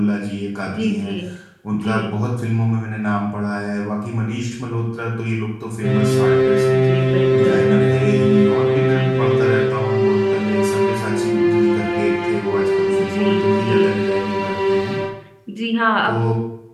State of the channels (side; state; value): both; identical; correlation 1.00